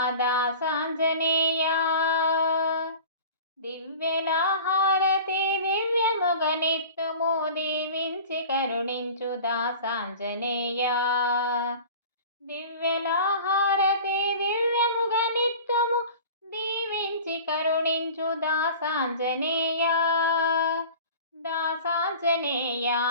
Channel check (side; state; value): both; inverted; correlation -0.40